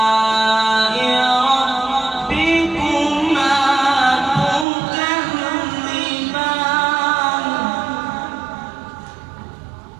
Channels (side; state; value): left; drops out; at 4.7 s